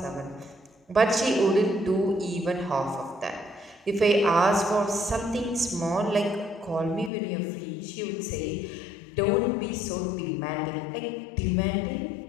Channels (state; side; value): drops out; right; at 7.1 s